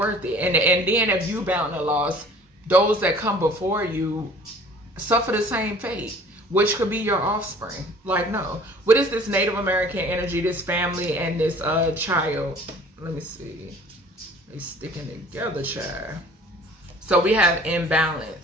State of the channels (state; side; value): normal; both; correlation 0.50